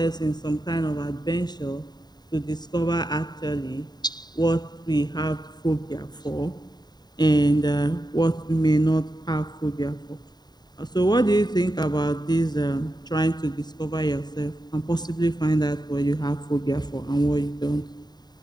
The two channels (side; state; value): right; late; 0.20 ms